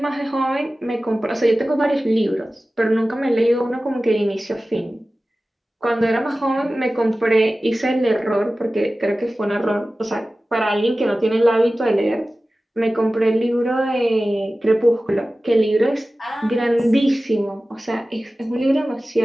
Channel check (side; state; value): both; normal; correlation 0.96